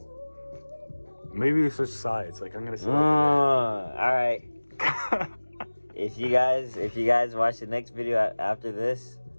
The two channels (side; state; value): both; inverted; correlation -1.00